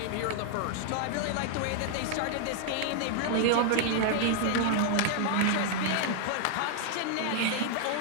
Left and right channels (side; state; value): both; different; correlation 0.00